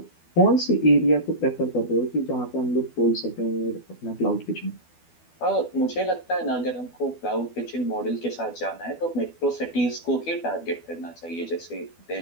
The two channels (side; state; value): right; late; 12 ms